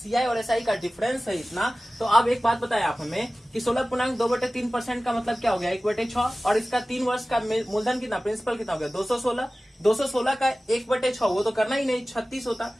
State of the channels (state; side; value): normal; both; correlation 0.97